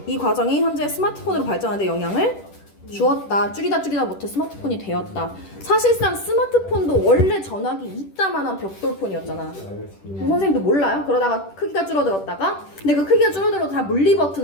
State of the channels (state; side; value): late; right; 10 ms